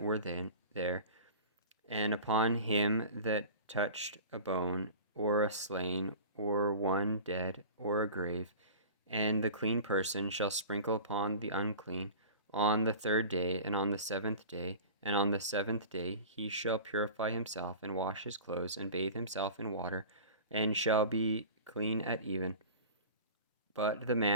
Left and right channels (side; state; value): both; inverted; correlation -0.37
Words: then there, and upon him that touched a bone, or a slain, or one dead, or a grave. And the clean person shall sprinkle upon the unclean on the 3rd day, and on the 7th day, and on the 7th day he shall purify himself, and wash his clothes, and bathe himself in water, and shall be clean at even. But the